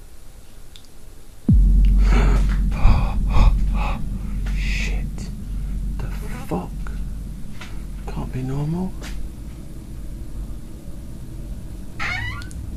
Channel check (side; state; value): both; identical; correlation 1.00